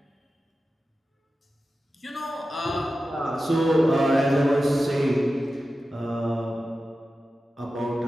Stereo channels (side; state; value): both; normal; correlation 0.93